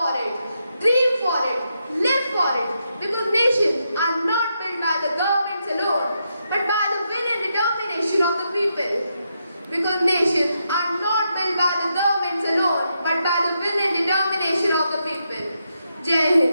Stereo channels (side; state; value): both; inverted; correlation -0.83